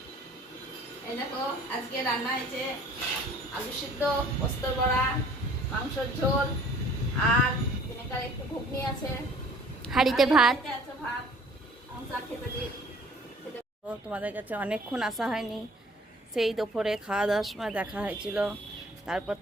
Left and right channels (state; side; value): normal; both; correlation 0.52